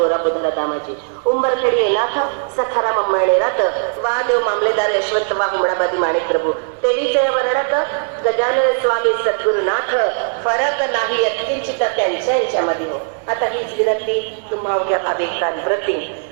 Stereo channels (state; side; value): silent; left; 67 dB below the other